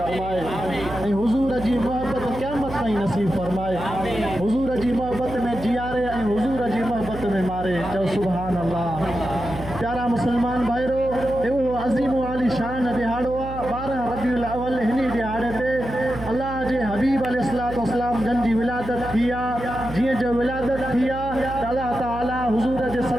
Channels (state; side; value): noise; right; hum, 11 dB below the sound